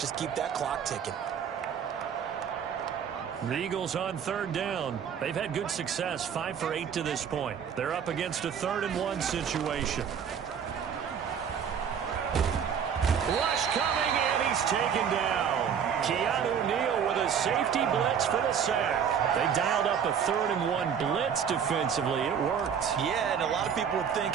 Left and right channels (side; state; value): left; quieter; 7.7 dB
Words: keep that clock ticking. The Eagles on 3rd down. They've had good success, 5 for 8 to this point. They're up against a 3rd and 1 situation. Rush coming, and he's taken down. Keanu Neal with a safety blitz for the sack. They dialed up a 3rd and 1 blitz defensively. It worked. Yeah, and a lot of people would think,